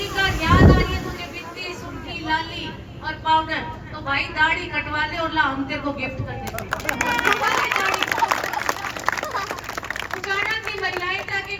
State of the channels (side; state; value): both; identical; correlation 1.00